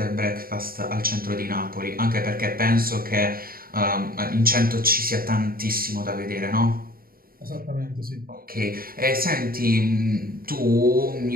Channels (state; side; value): late; left; 0.43 ms